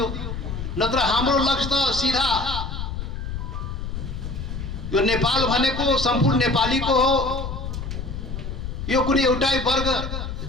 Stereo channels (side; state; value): left; noise; rumble, 5 dB below the sound